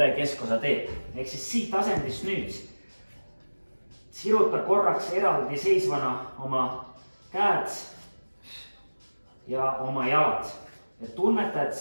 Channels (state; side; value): inverted; both; correlation -1.00